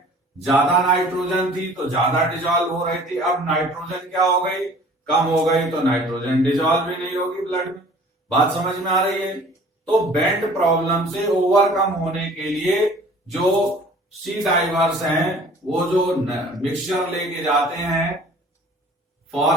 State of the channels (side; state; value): both; normal; correlation 0.49